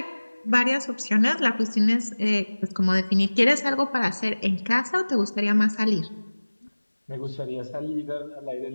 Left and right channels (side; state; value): both; inverted; correlation -1.00